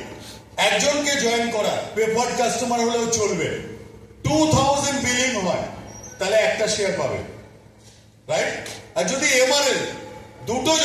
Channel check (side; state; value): both; identical; correlation 1.00